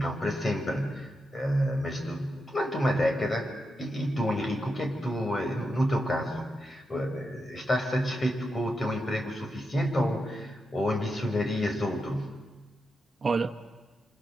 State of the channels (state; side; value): normal; both; correlation 0.86